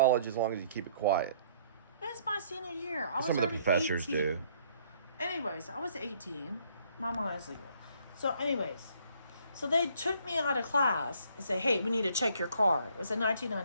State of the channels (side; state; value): both; inverted; correlation -0.62